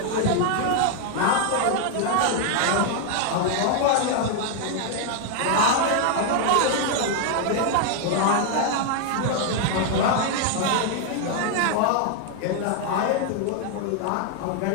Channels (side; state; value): both; different; correlation 0.00